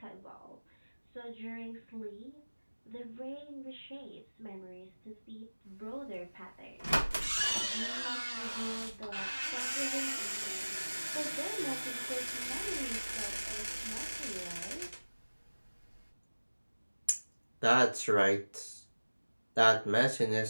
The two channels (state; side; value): inverted; both; correlation -1.00